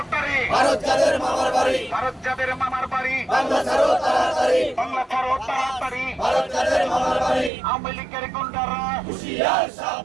ভারত যাদের মামার বাড়ি, ভারত যাদের মামার বাড়ি, বাংলা ছাড়ো তাড়াতাড়ি, বাংলা ছাড়ো তাড়াতাড়ি, ভারত যাদের মামার বাড়ি, আওয়ামী লীগের গুন্ডারা, হুঁশিয়ার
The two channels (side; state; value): left; drops out; at 7.5 s